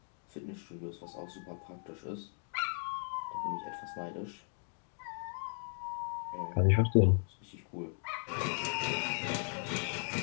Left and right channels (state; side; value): silent; right; 53 dB below the other